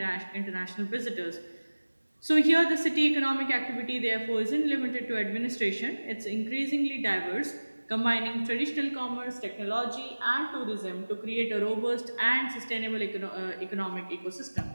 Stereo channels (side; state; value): both; inverted; correlation -1.00